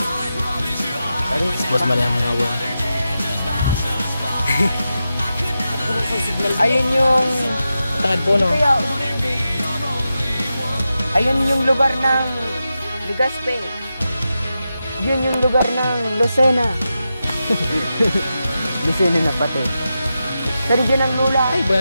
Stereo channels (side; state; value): both; inverted; correlation -0.90